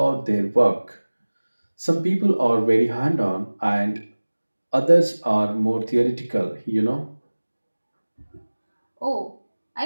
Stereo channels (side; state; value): both; inverted; correlation -1.00